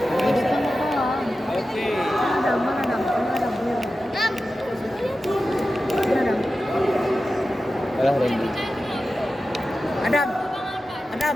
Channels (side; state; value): both; normal; correlation 0.93